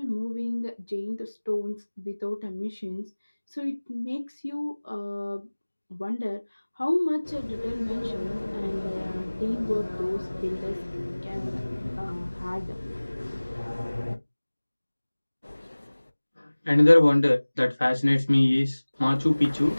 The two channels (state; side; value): inverted; both; correlation -1.00